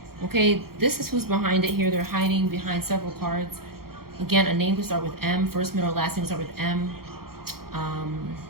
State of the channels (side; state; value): left; late; 0.94 ms